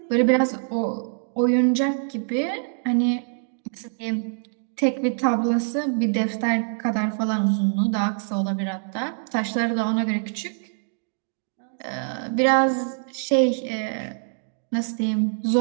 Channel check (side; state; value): left; silent; digital silence